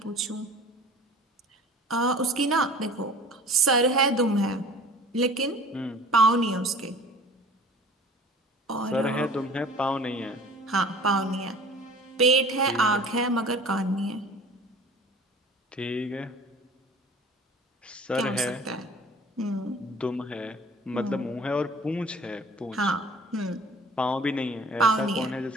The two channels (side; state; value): both; normal; correlation 0.45